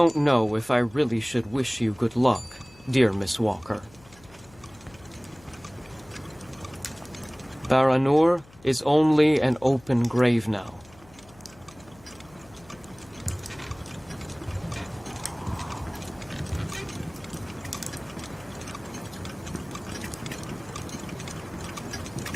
know if I really should wish you good luck, dear Miss Walker. Baranor is only an open grave now.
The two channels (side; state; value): left; noise; hum, 25 dB below the sound